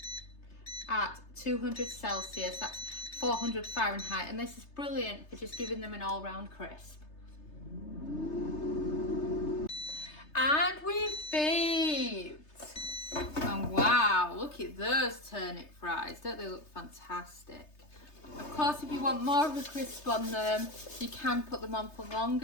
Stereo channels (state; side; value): late; right; 3.3 ms